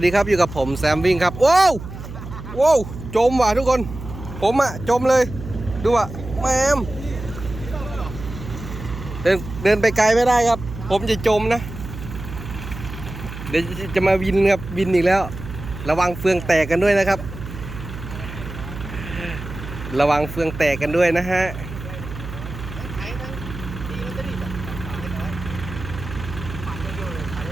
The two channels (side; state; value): right; noise; hum, 11 dB below the sound